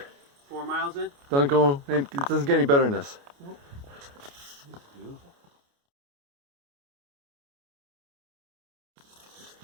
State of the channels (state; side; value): late; left; 29 ms